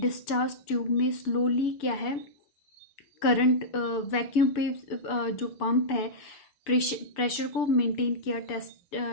discharge tube में slowly क्या है, current vacuum पे जो पंप है प्रेशर को मेंटेन किया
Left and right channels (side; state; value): right; late; 6.9 ms